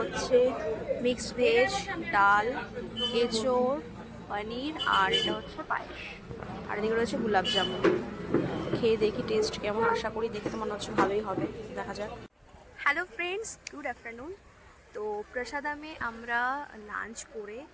মিক্সড ভেজ, ডাল, এঁচোড়, পনির, আর এটা হচ্ছে পায়েস, আর এদিকে রয়েছে গোলাপ জামুন। খেয়ে দেখি টেস্ট কেমন, আশা করি দেখে তো মনে হচ্ছে ভালোই হবে, দেখা যাক। Hello friends, good afternoon. তো প্রসাদামে আমরা লাঞ্চ করে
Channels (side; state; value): both; identical; correlation 1.00